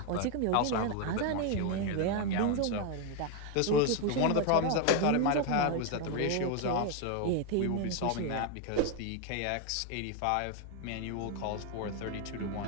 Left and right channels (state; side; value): different; both; correlation 0.01